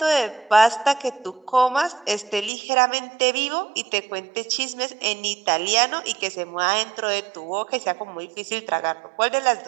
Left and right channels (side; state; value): left; drops out; at 2.5 s